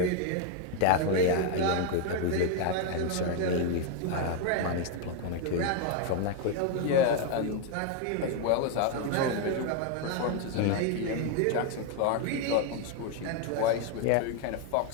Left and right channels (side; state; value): both; different; correlation 0.01